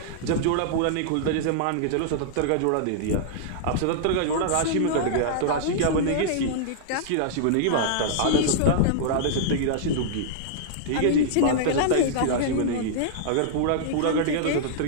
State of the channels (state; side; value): different; both; correlation -0.02